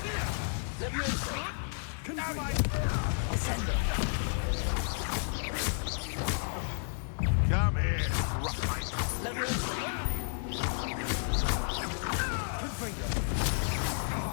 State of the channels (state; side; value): silent; right; 56 dB below the other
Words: Levioso. Descendo. Come here, Rockmite. Levioso. Confringo.